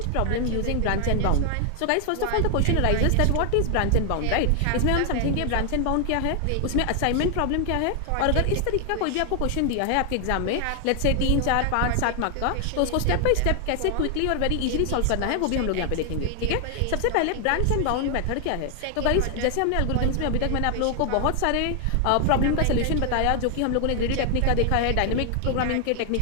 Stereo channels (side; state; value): both; different; correlation 0.00